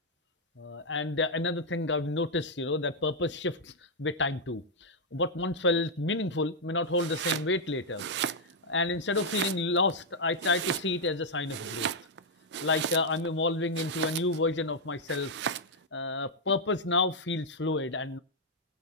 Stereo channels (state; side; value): normal; both; correlation -0.04